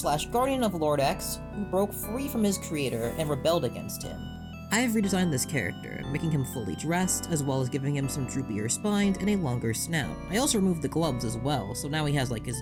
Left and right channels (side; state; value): both; identical; correlation 1.00